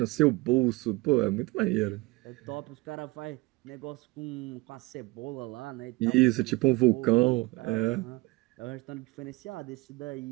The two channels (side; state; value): left; quieter; 23.0 dB